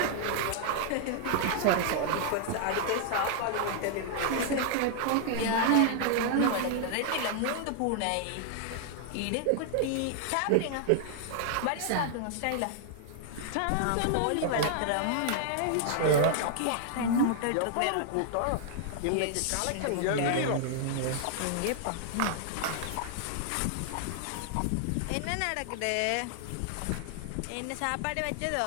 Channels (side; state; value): both; different; correlation -0.01